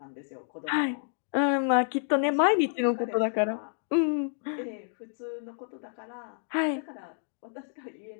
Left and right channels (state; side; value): silent; right; 58 dB below the other